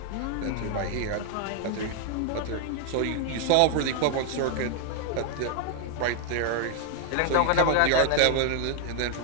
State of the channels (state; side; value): different; both; correlation 0.00